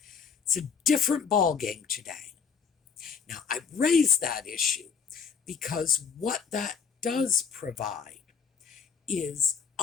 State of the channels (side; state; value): right; quieter; 6.2 dB